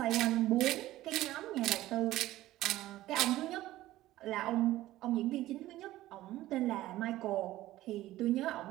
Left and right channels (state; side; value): quieter; left; 15.7 dB